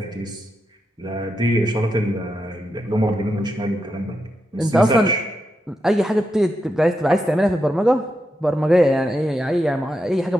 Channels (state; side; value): normal; both; correlation 0.86